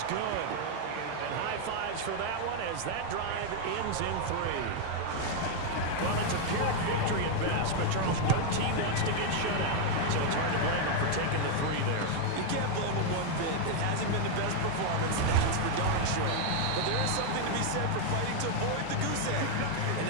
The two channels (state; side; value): different; both; correlation 0.01